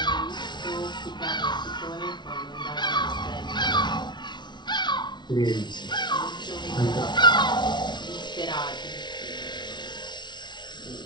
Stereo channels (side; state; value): right; late; 0.21 ms